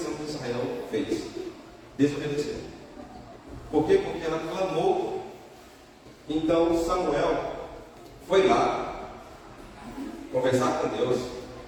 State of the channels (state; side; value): identical; both; correlation 1.00